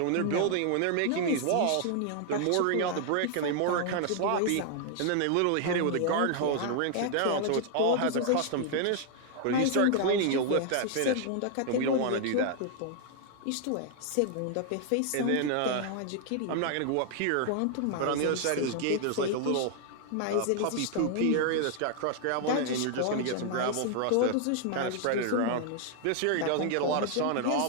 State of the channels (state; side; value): different; both; correlation 0.00